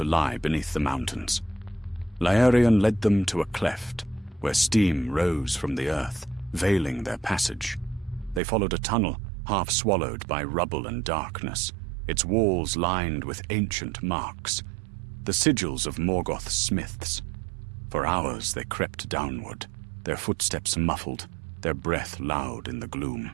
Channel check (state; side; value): drops out; left; at 8.4 s